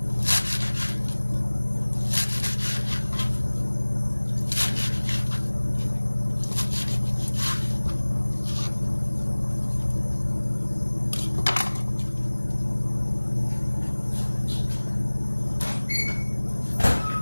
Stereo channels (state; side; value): inverted; both; correlation -1.00